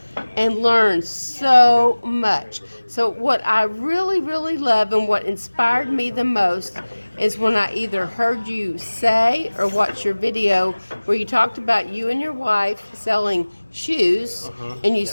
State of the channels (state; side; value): inverted; both; correlation -1.00